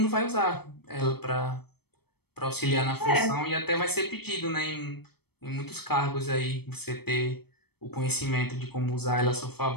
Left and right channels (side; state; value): right; late; 0.97 ms